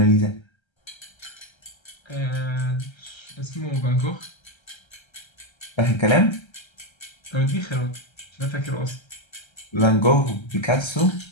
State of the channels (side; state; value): right; late; 1.3 ms